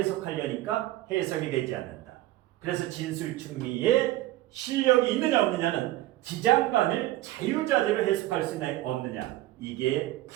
해석이 되지 않는다. 그래서 진술충리에 실력이 있느냐 없느냐는 지장간을 자유자재로 해석할 수 있느냐 없느냐 이게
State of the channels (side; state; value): left; quieter; 16.0 dB